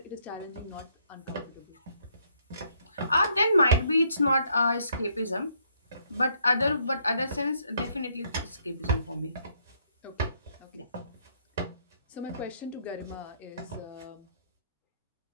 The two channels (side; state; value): both; inverted; correlation -0.70